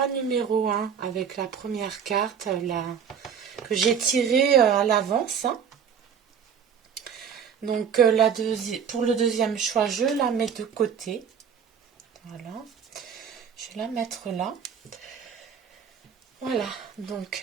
numéro 1 avec la première carte que j'ai tirée à l'avance. Hein. Donc pour le deuxième choix, je la mets de côté. Voilà. Je vais la mettre là. Voilà.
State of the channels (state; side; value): quieter; left; 7.4 dB